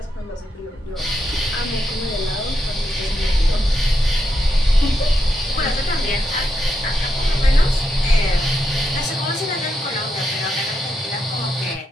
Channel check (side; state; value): both; normal; correlation 0.83